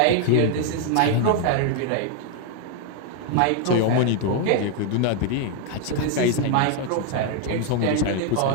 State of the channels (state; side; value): different; both; correlation 0.00